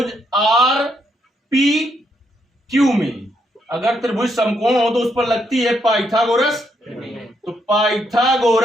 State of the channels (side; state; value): both; normal; correlation 0.77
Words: RPQ में अगर त्रिभुज समकोण हो तो उस पर लगती है पाइथागोरस। तो